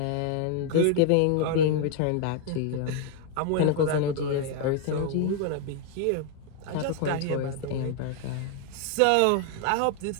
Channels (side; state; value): both; different; correlation 0.00